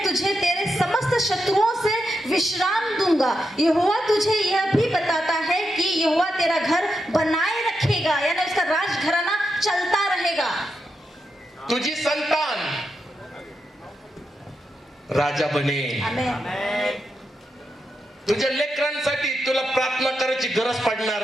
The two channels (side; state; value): both; normal; correlation 0.85